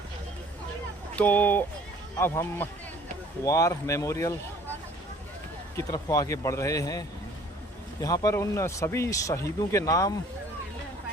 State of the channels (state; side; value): normal; both; correlation 0.53